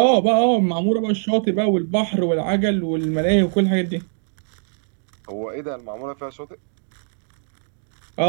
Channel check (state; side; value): silent; left; digital silence